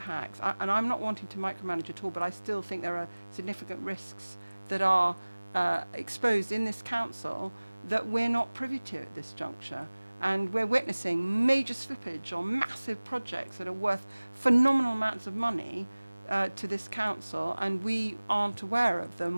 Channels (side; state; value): both; inverted; correlation -1.00